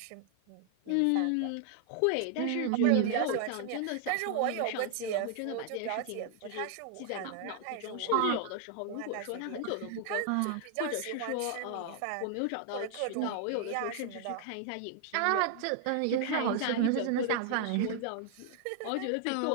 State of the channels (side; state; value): both; different; correlation 0.00